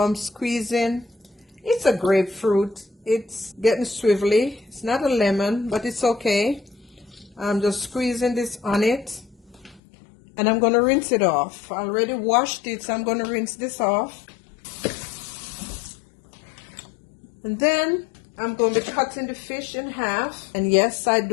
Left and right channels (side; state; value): right; drops out; at 9.8 s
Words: squeezing. It's a grapefruit. It's getting swivelly. It's not a lemon, but it's okay. I'm just squeezing this on it, and I'm going to rinse it off. I already washed it, so I'm going to rinse this off. And then I'm going to be cutting the fish in half. And yes, I